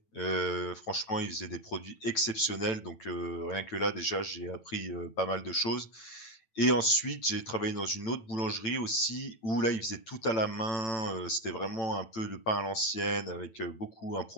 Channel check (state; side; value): late; right; 9.0 ms